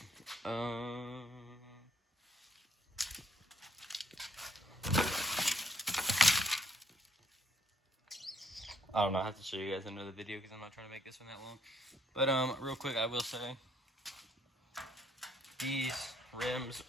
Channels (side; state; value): both; normal; correlation 0.68